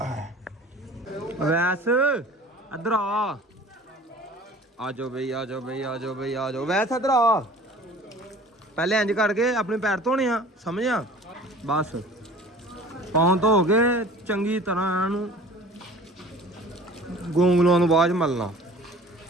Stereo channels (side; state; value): both; normal; correlation 0.46